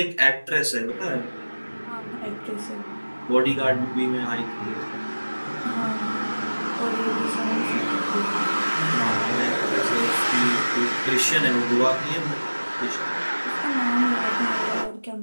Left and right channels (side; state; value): both; inverted; correlation -1.00